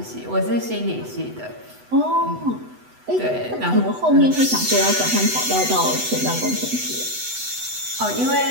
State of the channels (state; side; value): late; left; 8.0 ms